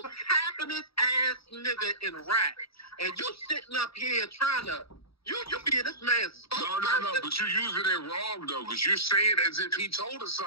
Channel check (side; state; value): right; late; 0.76 ms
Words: happiness ass nigga in rap, and you sitting up here trying to you be in this man's spokesperson. No, but you're using it wrong though, because you're saying as if he told us